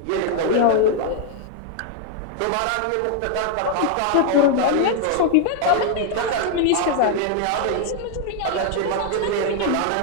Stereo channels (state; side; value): different; both; correlation 0.00